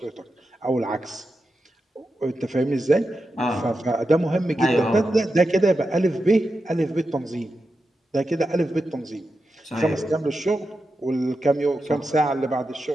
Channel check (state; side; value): normal; both; correlation 0.89